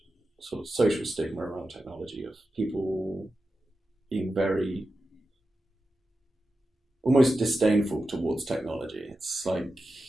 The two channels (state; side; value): normal; both; correlation 0.91